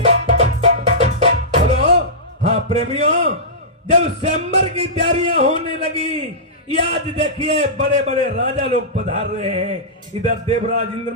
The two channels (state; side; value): normal; both; correlation -0.17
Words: प्रेमियों, जब स्वयंवर की तैयारियां होने लगी, आज देखिए बड़े बड़े राजा लोग पधार रहे हैं। इधर देवराज इंद्र